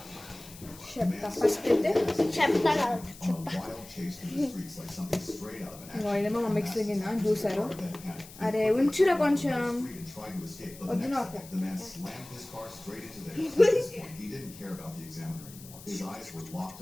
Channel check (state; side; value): noise; left; hiss, 18 dB below the sound